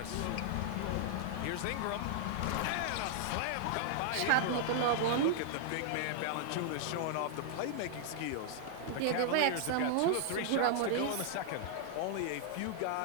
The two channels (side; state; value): both; different; correlation -0.01